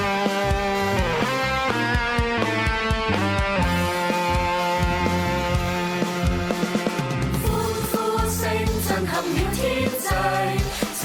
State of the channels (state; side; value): identical; both; correlation 1.00